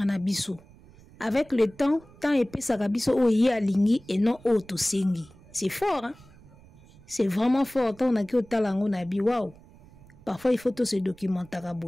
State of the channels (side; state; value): right; noise; rumble, 24 dB below the sound